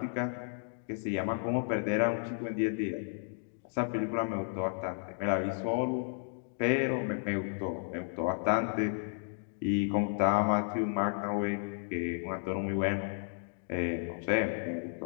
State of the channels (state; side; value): silent; right; digital silence